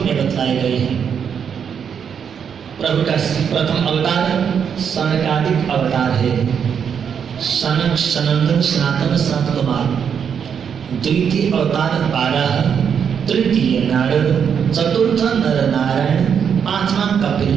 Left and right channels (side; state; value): left; quieter; 7.5 dB